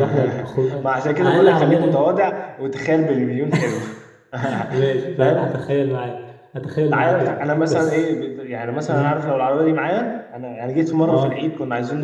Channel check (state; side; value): identical; both; correlation 1.00